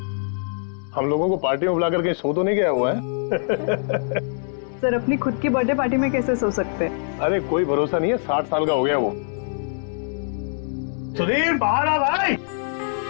हम लोगों को पार्टी में बुलाकर कहीं सो तो नहीं गया हुआ है? सर अपनी खुद की बर्थडे पार्टी में कैसे सो सकते हैं? अरे कोई भरोसा नहीं है, 60 साल का हो गया वो। सुधीर बाहर आ भाई।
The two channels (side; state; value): right; silent; 63 dB below the other